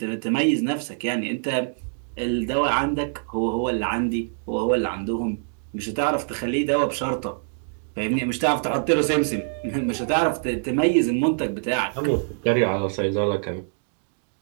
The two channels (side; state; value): left; silent; digital silence